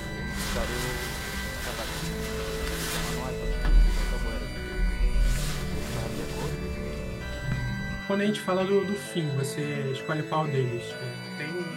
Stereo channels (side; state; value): both; identical; correlation 1.00